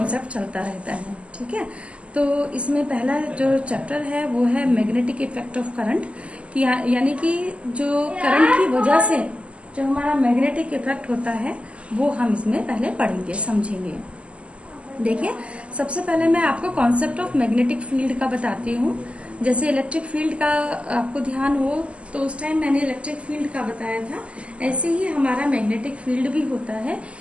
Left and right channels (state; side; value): late; left; 0.057 ms